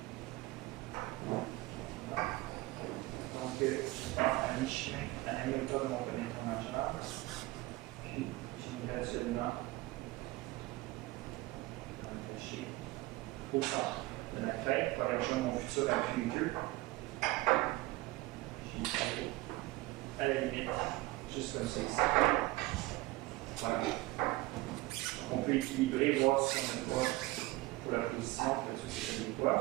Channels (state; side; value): quieter; left; 20.1 dB